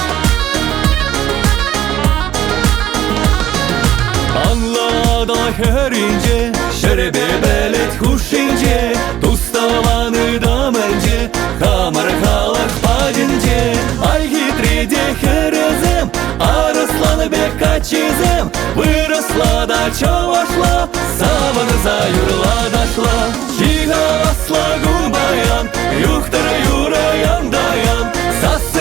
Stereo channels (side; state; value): left; quieter; 12.7 dB